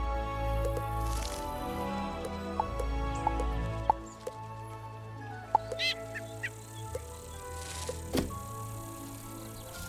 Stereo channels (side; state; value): both; identical; correlation 1.00